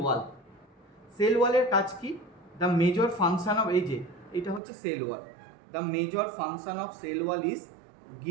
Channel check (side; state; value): left; drops out; at 4.6 s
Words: সেল ওয়ালের কাজ কি? দ্য মেজর ফাংশন অফ, এই যে এটা হচ্ছে cell wall. The major function of cell wall is